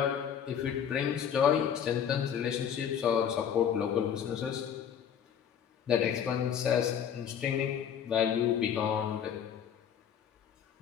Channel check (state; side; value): quieter; right; 8.5 dB